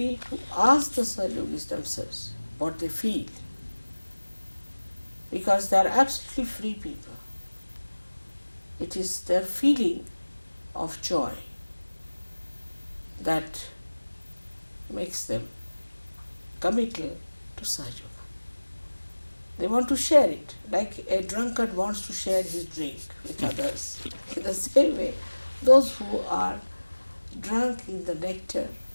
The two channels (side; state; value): both; inverted; correlation -1.00